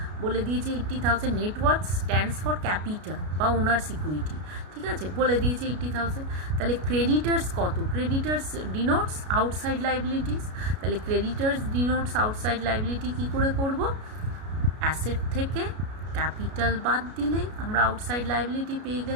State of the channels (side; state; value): left; late; 33 ms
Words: বলে দিয়েছে 80,000। Net worth stands for capital বা ওনার্স ইকুইটি। ঠিক আছে, বলে দিয়েছে 80,000। তাহলে ক্রেডিটার্স কত, ক্রেডিটার্স ডিনোটস আউটসাইড লাইবিলিটিস। তাহলে ক্রেডিটার্স ডিনোটস আউটসাইড লাইবিলিটি কী করে করব, অ্যাসেট থেকে ক্যাপিটাল বাদ দিলেই আমরা আউটসাইড লাইবিলিটি পেয়ে